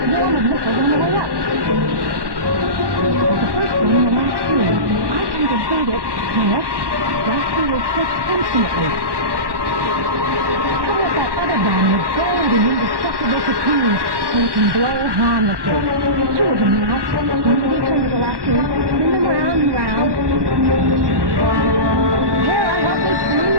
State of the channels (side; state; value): left; late; 1.1 ms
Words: swarm of missiles on the way up. The first one, the last two. I can defend it, yes. Last two will hit infinitely. How about that other bomb with gold and indestructible cocoons so it can blow harmlessly? Two of them now. Immediately turn to the last two. Spin them round and round. There I have this